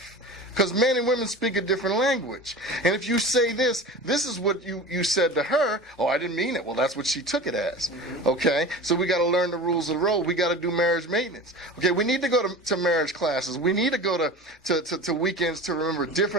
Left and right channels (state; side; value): normal; both; correlation 0.34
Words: because men and women speak a different language. And if you say this is what you said to her, oh, I didn't mean it. Well, that's what she took it as. Okay? So we got to learn the rules of the road. We got to do marriage maintenance. Okay, we need to go to marriage classes. We need to go to weekends to remember